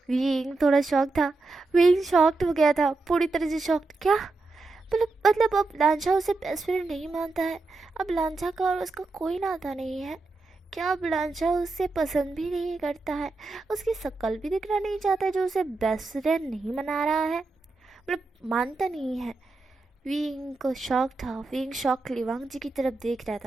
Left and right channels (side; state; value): left; quieter; 3.5 dB